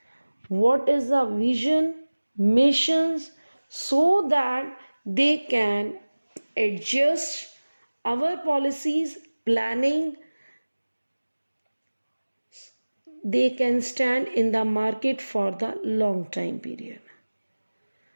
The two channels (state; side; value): inverted; both; correlation -1.00